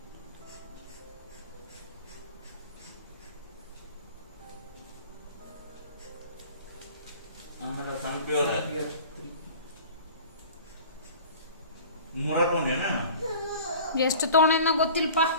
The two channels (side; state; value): both; inverted; correlation -0.43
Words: ಎಷ್ಟು ತೊಗೊಂಡ ಗೊತ್ತಿಲ್ಪ.